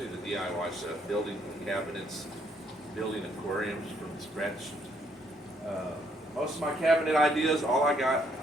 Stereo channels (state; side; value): normal; both; correlation 0.70